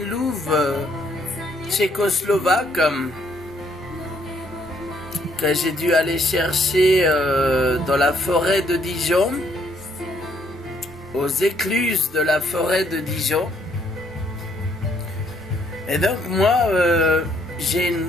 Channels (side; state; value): both; normal; correlation 0.68